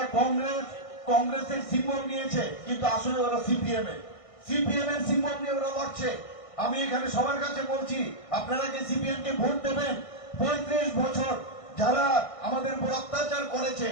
কংগ্রেসের সিম্বল নিয়েছে কিন্তু আসলে ওরা সিপিএম এর সিম্বল নিয়ে ওরা লড়ছে। আমি এখানে সবার কাছে বলছি, আপনারা যে সিপিএম কে ভোট দেবেন, 35 বছর যারা আমাদের উপর অত্যাচার করেছে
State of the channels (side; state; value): right; late; 1.6 ms